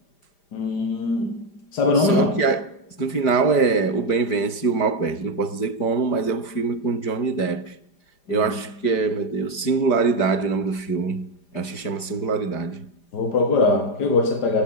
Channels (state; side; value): late; right; 5.0 ms